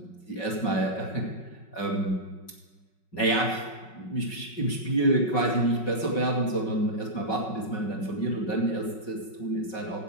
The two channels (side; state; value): right; late; 5.3 ms